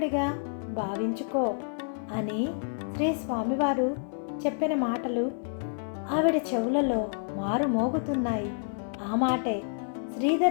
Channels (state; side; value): silent; right; 59 dB below the other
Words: భావించుకో అని శ్రీ స్వామివారు చెప్పిన మాటలు ఆవిడ చెవులలో మారుమోగుతున్నాయి. ఆ మాటే